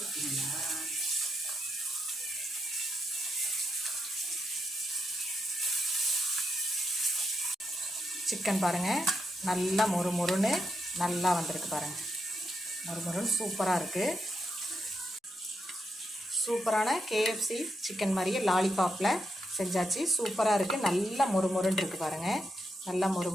சிக்கன் பாருங்கள், நல்லா மொறுமொறுன்னு நல்லா வந்திருக்கு பாருங்கள். மொறுமொறுன்னு சூப்பராக இருக்குது. சூப்பரான கேஎஃப்சி சிக்கன் மாதிரியே லாலிபாப்பில் செஞ்சாச்சு. சூப்பராக இருக்குது. நல்லா மொறுமொறுன்னு இருக்குது பாருங்கள். நல்லா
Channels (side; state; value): both; normal; correlation 0.83